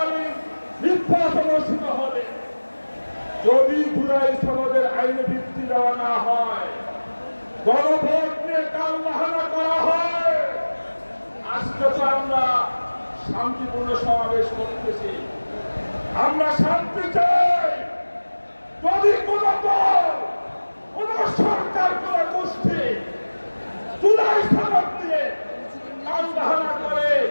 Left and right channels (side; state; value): both; inverted; correlation -1.00